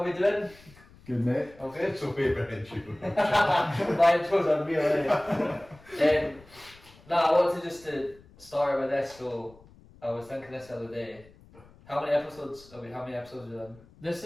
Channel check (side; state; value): left; noise; rumble, 25 dB below the sound